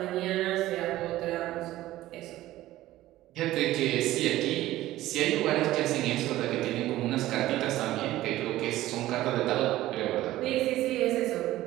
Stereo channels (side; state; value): left; quieter; 15.5 dB